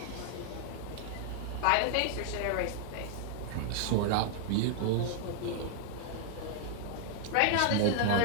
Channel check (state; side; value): different; both; correlation -0.01